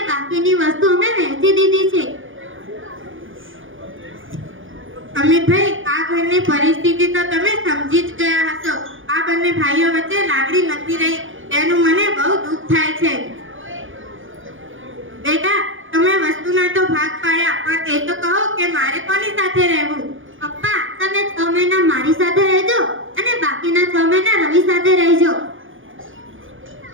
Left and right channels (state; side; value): late; left; 0.58 ms